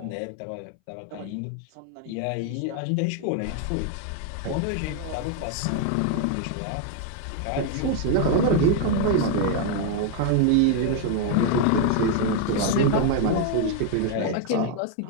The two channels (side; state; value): both; different; correlation 0.01